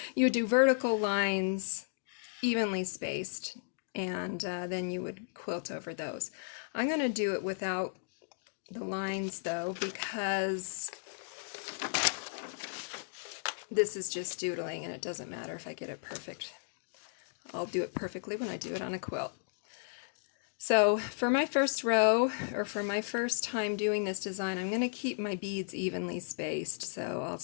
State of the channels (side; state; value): right; silent; digital silence